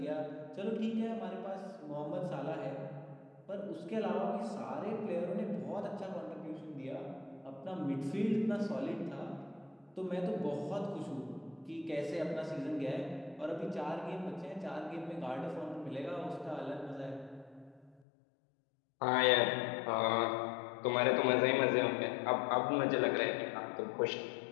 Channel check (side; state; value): right; drops out; at 18.0 s